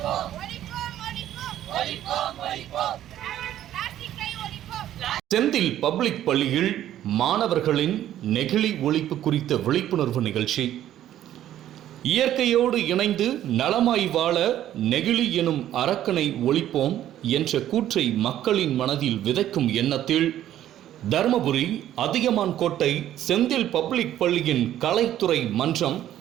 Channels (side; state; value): left; quieter; 12.1 dB